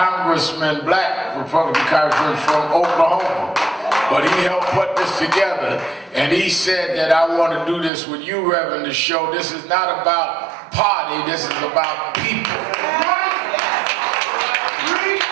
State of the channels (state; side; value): drops out; left; at 7.9 s